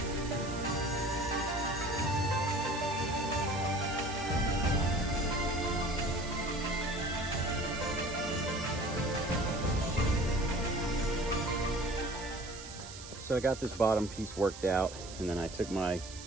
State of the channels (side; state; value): right; noise; hiss, 13 dB below the sound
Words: So I got this bottom piece worked out, and then I took my